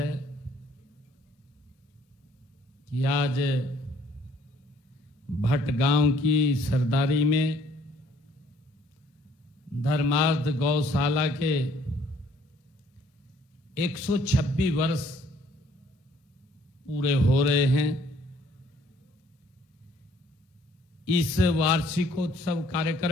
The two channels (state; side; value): normal; both; correlation 0.61